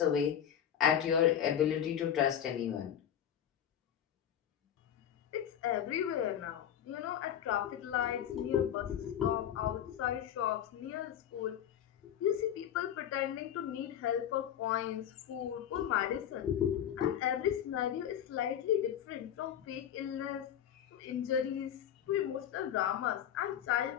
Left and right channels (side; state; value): right; quieter; 9.8 dB